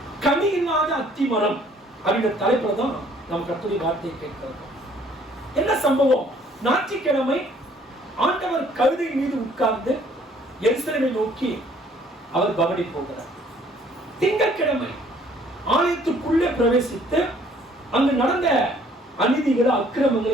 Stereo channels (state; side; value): normal; both; correlation 0.60